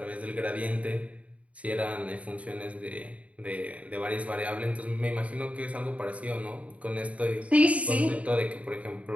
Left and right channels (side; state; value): left; late; 0.066 ms